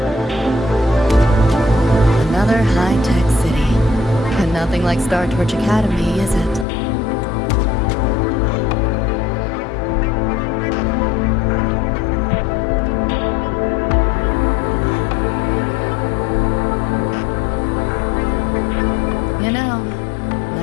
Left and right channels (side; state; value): right; drops out; at 6.7 s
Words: Another high-tech city. And nothing like Star Torch Academy, is it? You know,